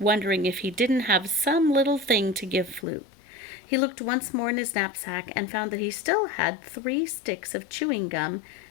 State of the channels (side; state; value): right; drops out; at 2.9 s